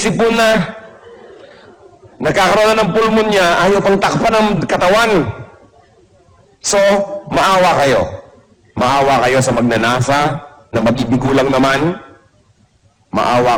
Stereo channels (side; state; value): both; identical; correlation 1.00